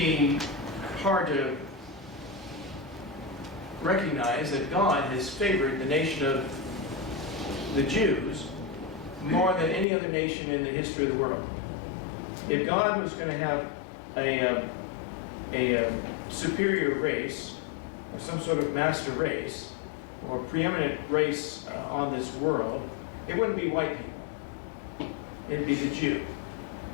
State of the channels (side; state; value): right; drops out; at 9.9 s